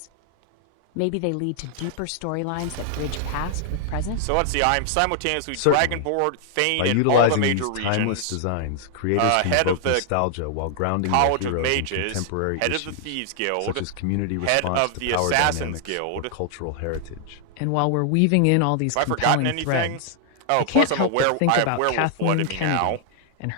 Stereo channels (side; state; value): both; different; correlation 0.00